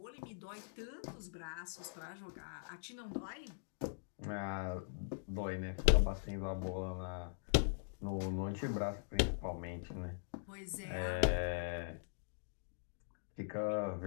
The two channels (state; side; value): silent; right; digital silence